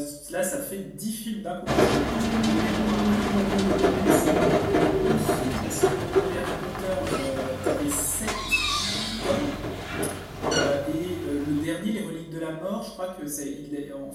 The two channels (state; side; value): identical; both; correlation 1.00